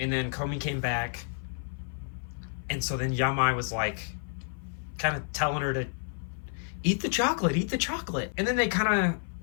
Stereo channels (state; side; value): silent; right; 56 dB below the other